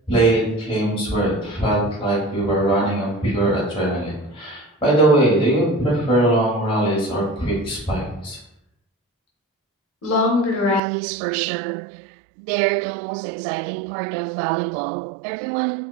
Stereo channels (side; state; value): left; drops out; at 10.8 s